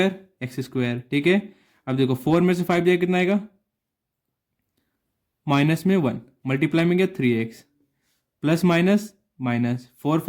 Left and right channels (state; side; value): identical; both; correlation 1.00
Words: x स्क्वायर। ठीक है, अब देखो 4 में से 5 जाएगा कितना आएगा? माइनस में 1, मल्टीप्लाई में गया 3x, प्लस माइनस माइनस, 4